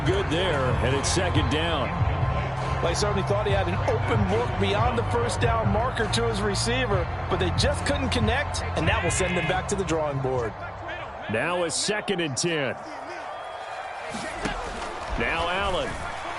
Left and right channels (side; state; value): both; identical; correlation 1.00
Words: good there, and it's 2nd down. Well, he certainly thought he had an open look beyond the first down marker to his receiver, but they just couldn't connect, and that will send them back to the drawing board. Now a 2nd and 10. Now Allen.